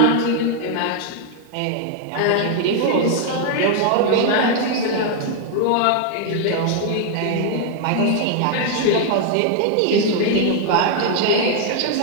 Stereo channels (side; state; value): both; different; correlation 0.00